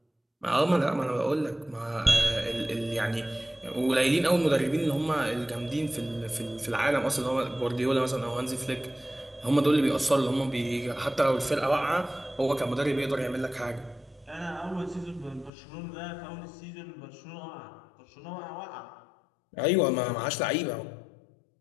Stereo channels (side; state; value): right; drops out; at 15.5 s